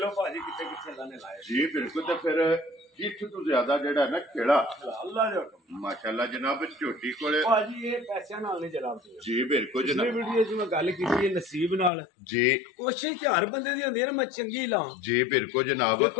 ਭਾਜੀ ਕਿੱਥੇ ਕਿੱਥੇ ਅੱਲਾ ਨੇ ਲਾਇਆ ਜੀ ਬਿਲਕੁਲ ਤੇ ਫਿਰ ਜਿੱਥ ਤੋਂ ਜ਼ਿਆਦਾ ਜਿਹੜਾ ਨਾ ਖੇੜਾ ਅੱਲਾ ਦੇ ਹੁਕਮ ਮਾਸ਼ਾਅੱਲਾ ਜਨਾਬ ਝੋਟੀ ਕੋਲੇ ਭਾਜੀ ਇਹ ਪੈਸਿਆਂ ਨਾਲ ਨਹੀਂ ਜਨਾਬ ਜੀ ਬਿਲਕੁਲ ਪਿਛਲੀ ਜਨਾਬ ਵੀਡੀਓ 'ਚ ਮੈਂ ਗੱਲ ਕੀਤੀ ਹੈ ਨਸੀਬ ਨਾਲ ਜੀ ਕੋਸ਼ਿਸ਼ ਤੇ ਹਰ ਬੰਦੇ ਦੀ ਹੁੰਦੀ ਹੈ ਨਾ ਮੈਂ ਚੰਗੀ ਲਾਂ ਜੀ ਬਿਲਕੁਲ ਜਨਾਬ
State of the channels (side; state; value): right; drops out; at 11.9 s